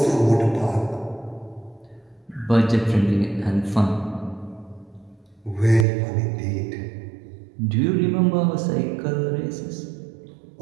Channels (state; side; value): drops out; left; at 5.9 s